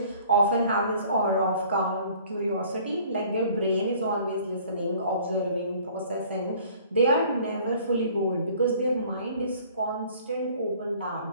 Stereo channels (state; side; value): inverted; both; correlation -0.53